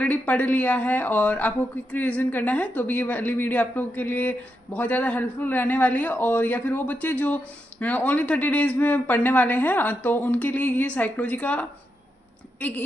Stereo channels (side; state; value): both; normal; correlation 0.84